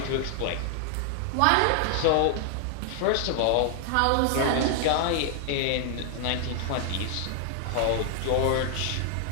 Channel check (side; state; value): both; different; correlation 0.00